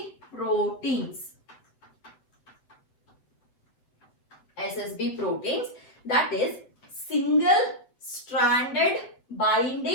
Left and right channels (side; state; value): right; late; 8.1 ms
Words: proteins. SSB proteins, that is single stranded